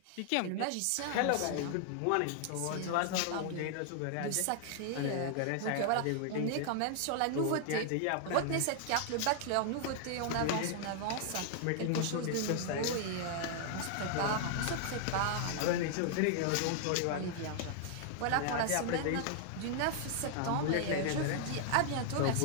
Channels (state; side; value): different; both; correlation 0.00